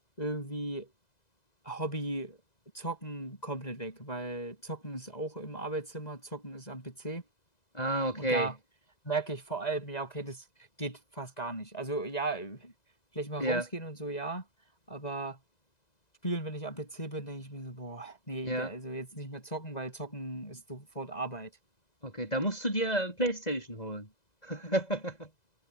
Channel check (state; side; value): late; right; 2.0 ms